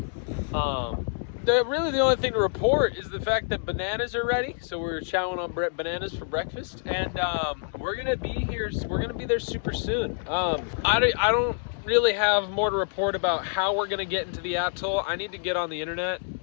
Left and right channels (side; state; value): right; silent; digital silence